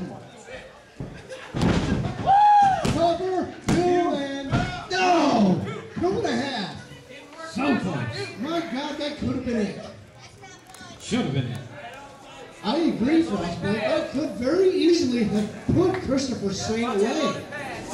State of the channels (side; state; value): both; identical; correlation 1.00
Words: Cover, 2 and no! 2.5. So close. My God, that could have been it. Should have been it. I agree, Frostbite. That could very easily have put Christopher Saint away.